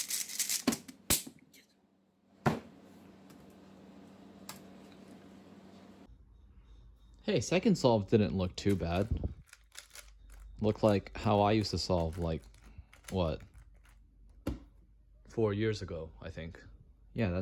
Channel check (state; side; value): identical; both; correlation 1.00